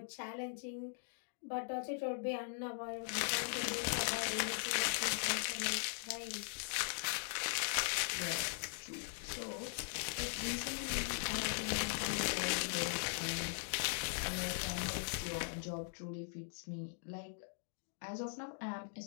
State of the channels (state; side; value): silent; right; digital silence